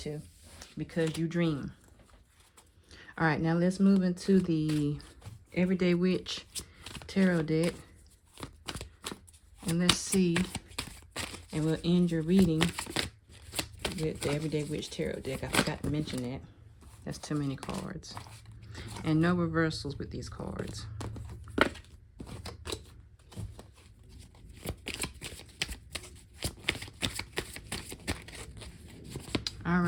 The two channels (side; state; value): both; identical; correlation 1.00